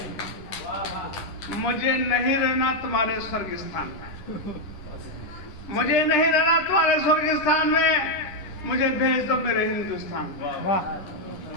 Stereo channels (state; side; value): late; right; 9.9 ms